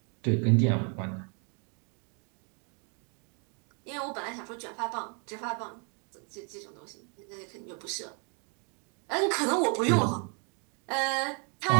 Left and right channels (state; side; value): quieter; left; 37.4 dB